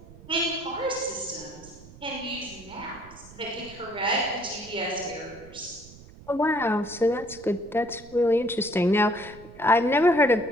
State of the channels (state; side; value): noise; right; rumble, 20 dB below the sound